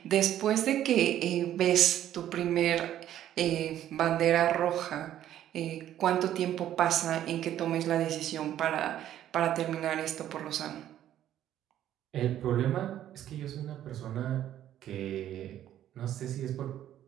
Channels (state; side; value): quieter; left; 11.7 dB